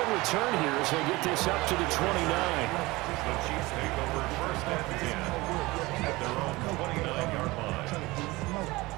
return here as they get this up to the 29. The Chiefs take over first and 10 at their own 29-yard line.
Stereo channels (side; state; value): left; quieter; 21.3 dB